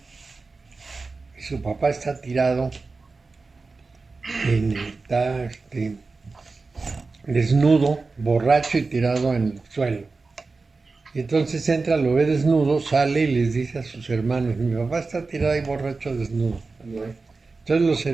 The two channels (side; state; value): left; quieter; 4.0 dB